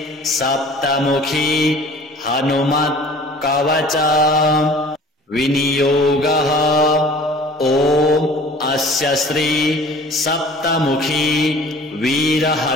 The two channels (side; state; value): both; normal; correlation 0.47